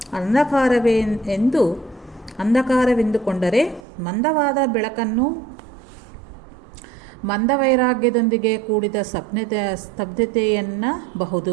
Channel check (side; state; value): left; drops out; at 3.9 s